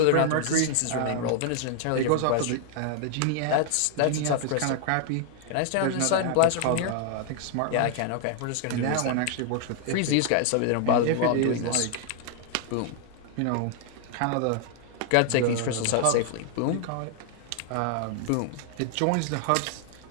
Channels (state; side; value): different; both; correlation 0.00